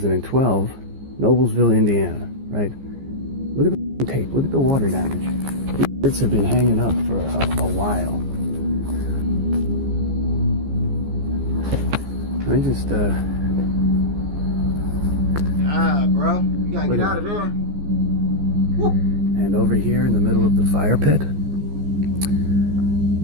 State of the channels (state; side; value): late; left; 15 ms